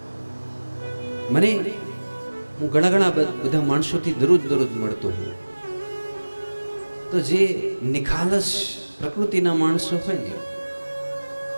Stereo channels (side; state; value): both; inverted; correlation -1.00